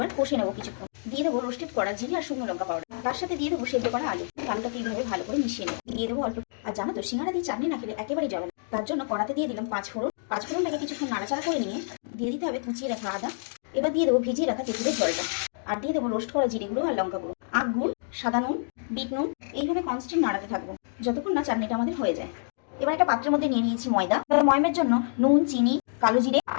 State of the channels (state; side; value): silent; right; digital silence